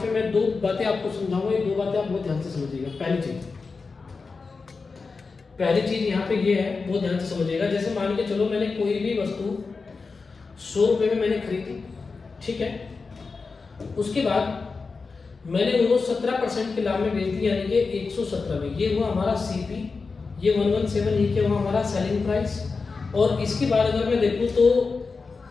पे मैं दो बातें आपको समझाऊंगा, ये दो बातें आप बहुत ध्यान से समझिएगा। पहली चीज यहाँ पे ये है, बहुत ध्यान से समझिएगा। जैसे मान के चलो मैंने कोई भी वस्तु 100 रुपये में मैंने खरीदी, ठीक है, उसके बाद मैंने उनको 17% के लाभ में बेच दी, यानी कि 117 में। ये हुआ हमारा सीपी, ये 117, ये क्या हुआ हमारा सेलिंग प्राइस। और इसके बाद अगर मैं देखूँ तो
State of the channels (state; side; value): quieter; right; 4.5 dB